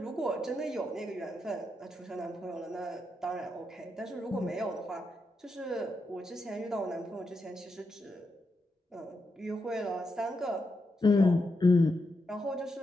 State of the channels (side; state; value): both; normal; correlation 0.84